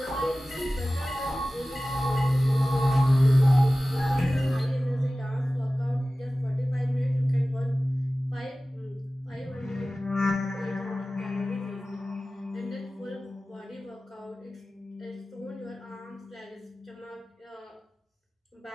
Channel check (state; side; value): normal; both; correlation 0.96